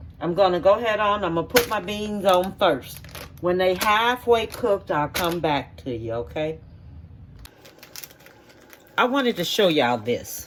I'm going to go ahead on. I'm going to put my beans on first. When they halfway cooked, I'll come back to you. Okay. I wanted to show y'all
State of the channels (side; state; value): both; identical; correlation 1.00